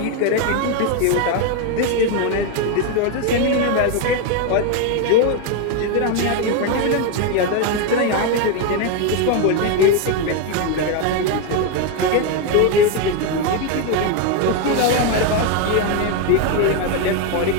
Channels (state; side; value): different; both; correlation 0.02